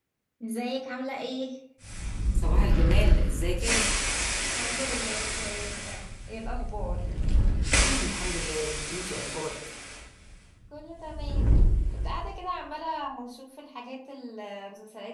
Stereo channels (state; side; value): identical; both; correlation 1.00